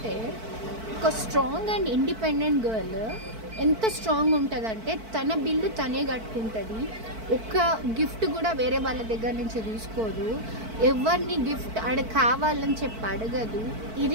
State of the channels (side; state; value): left; late; 4.5 ms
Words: ఒక స్ట్రాంగ్ అండ్ ఇండిపెండెంట్ గర్ల్ ఎంత స్ట్రాంగ్ ఉంటుందంటే తన బిల్లు తనే కట్టుకుంటుంది. ఒక్క గిఫ్ట్ కూడా వేరే వాళ్ళ దగ్గర నుంచి తీసుకోదు. ఎవరిని గిఫ్ట్ కావాలని చెప్పి అడగదు.